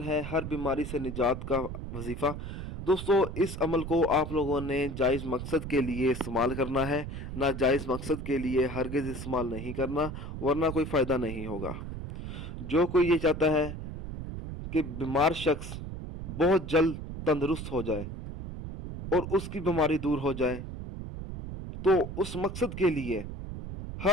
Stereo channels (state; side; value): noise; right; rumble, 8 dB below the sound